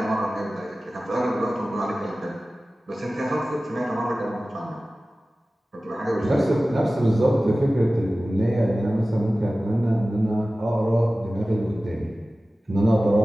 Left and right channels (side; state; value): both; normal; correlation 0.96